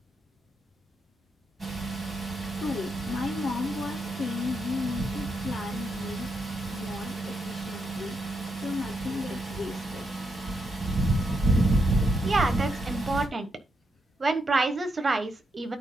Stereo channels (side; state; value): both; normal; correlation 0.81